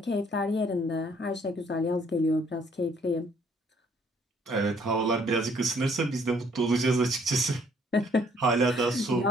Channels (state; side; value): normal; both; correlation 0.63